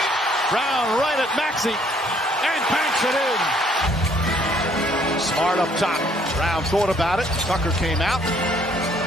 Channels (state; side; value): normal; both; correlation 0.64